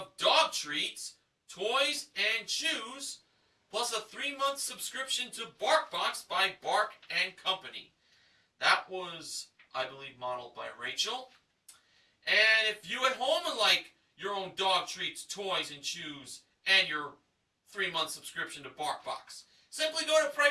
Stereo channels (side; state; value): both; identical; correlation 1.00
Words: dog treats, toys, and chews, plus a 3-month subscription to BarkBox by Bark and Company. That was, I believe, modeled by Rachel. And if you at home would like your own dog treats, toys, and chews, and your 3-month subscription to BarkBox, simply go to